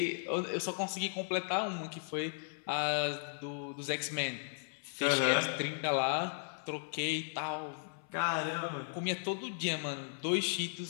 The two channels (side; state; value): right; silent; 54 dB below the other